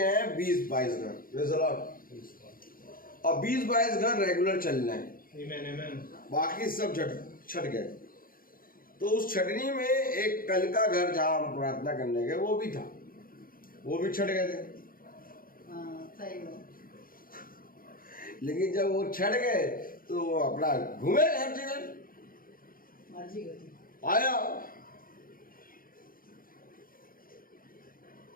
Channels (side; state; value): right; late; 0.41 ms